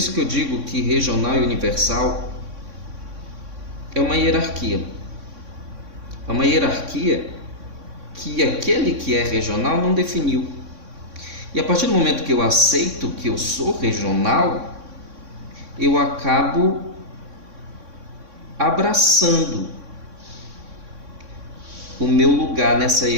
que eu digo que regional e universal é uma hierarquia. É uma hierarquia que aquele que é regional não definiu. E a partir do momento que eu aceito que eu sou regional, eu acabo abraçando o meu lugar nessa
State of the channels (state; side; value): late; left; 3.6 ms